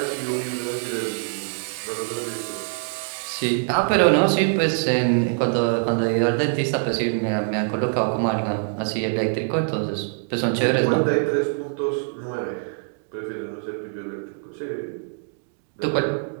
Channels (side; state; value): left; silent; digital silence